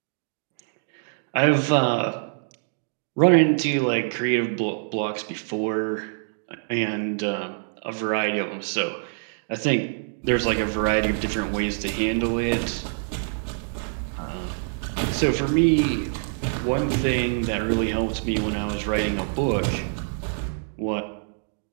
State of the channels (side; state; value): left; silent; digital silence